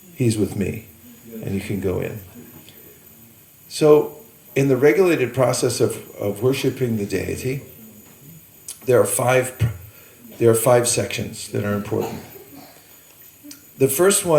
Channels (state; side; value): identical; both; correlation 1.00